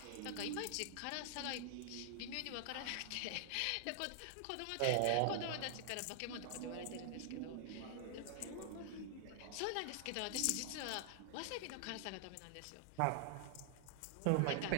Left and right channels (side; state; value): both; different; correlation 0.00